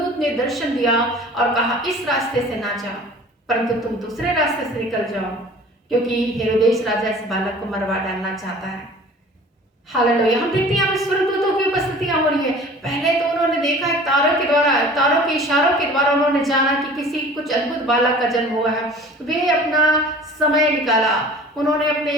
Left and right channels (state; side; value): normal; both; correlation 0.45